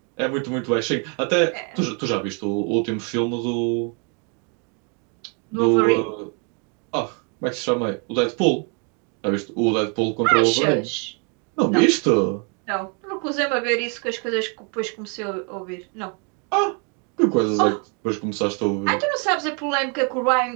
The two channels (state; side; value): quieter; left; 37.3 dB